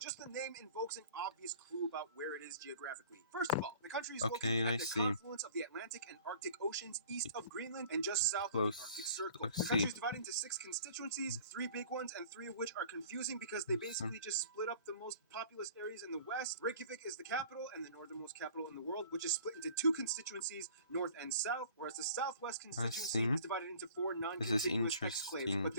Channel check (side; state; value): both; inverted; correlation -0.48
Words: Just the name invokes an obvious clue about where it is geographically. First of all, the country is Okay, located I at the see. confluence of the Atlantic and Arctic Oceans east of Greenland and just south of the Arctic Circle. Let's The see. country is divided into 6 constituencies, 3 big ones, and 3 of which are confusing because they basically just split up the most populous areas in the west. Reykjavik is the capital and the northernmost capital in the world, which is split into 2 constituencies, north and south, whereas the southwest constituency is divided into 4 non-contiguous exclaves, but